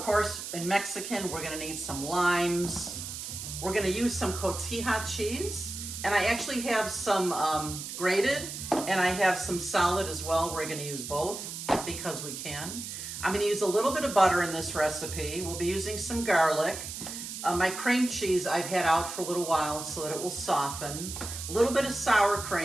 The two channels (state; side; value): noise; right; hiss, 8 dB below the sound